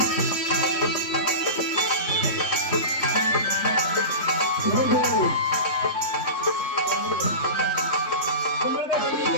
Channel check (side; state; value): right; late; 3.5 ms